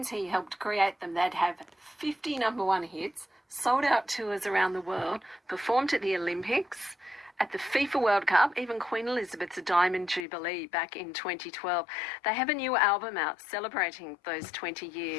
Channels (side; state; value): right; drops out; at 10.2 s